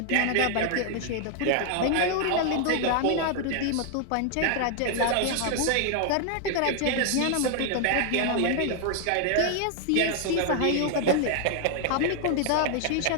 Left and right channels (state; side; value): different; both; correlation 0.00